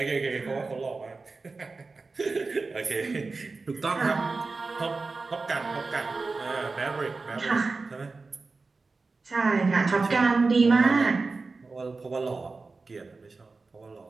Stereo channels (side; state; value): left; quieter; 3.9 dB